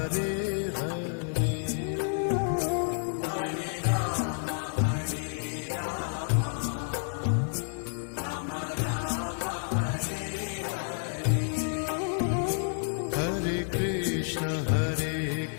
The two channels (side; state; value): right; silent; 58 dB below the other